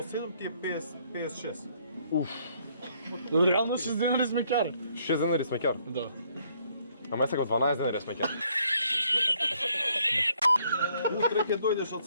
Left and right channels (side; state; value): both; inverted; correlation -0.67